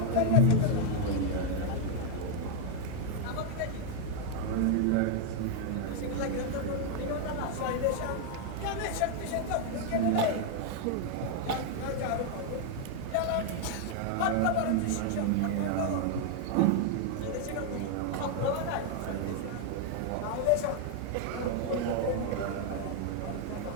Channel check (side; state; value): both; different; correlation 0.00